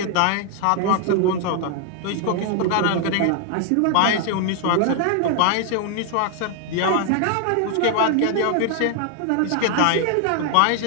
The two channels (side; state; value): both; different; correlation 0.00